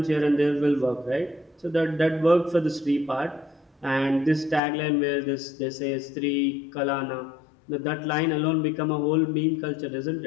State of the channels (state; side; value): drops out; right; at 4.6 s